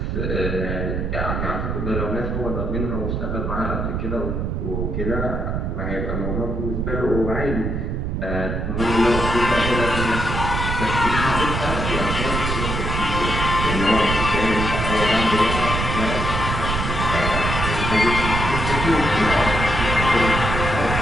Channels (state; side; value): noise; right; rumble, 2 dB below the sound